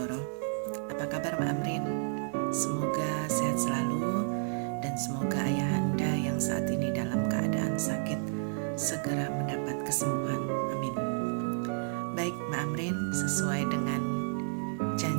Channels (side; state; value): left; silent; 57 dB below the other